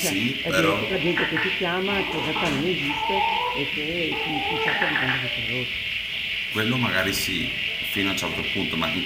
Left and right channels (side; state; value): both; identical; correlation 1.00